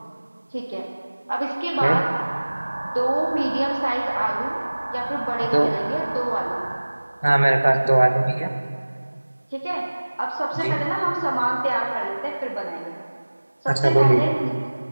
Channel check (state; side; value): inverted; both; correlation -1.00